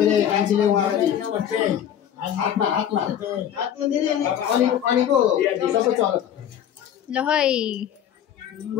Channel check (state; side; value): quieter; right; 9.9 dB